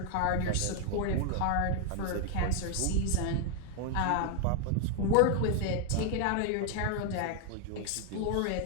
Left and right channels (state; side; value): different; both; correlation 0.00